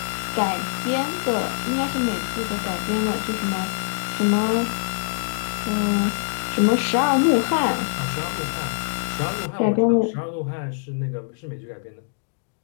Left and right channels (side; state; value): right; silent; digital silence